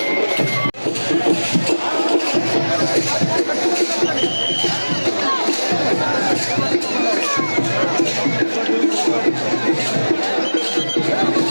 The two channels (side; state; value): both; inverted; correlation -1.00